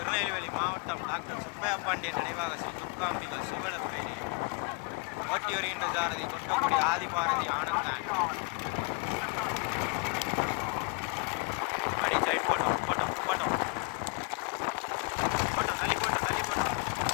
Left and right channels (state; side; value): quieter; right; 31.6 dB